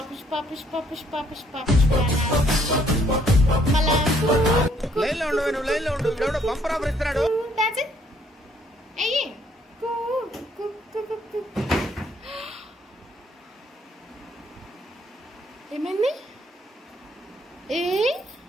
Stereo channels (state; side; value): normal; both; correlation 0.66